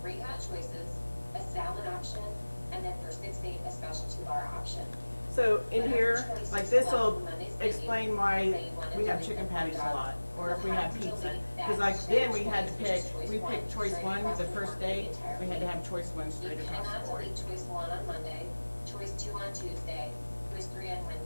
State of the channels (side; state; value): both; inverted; correlation -1.00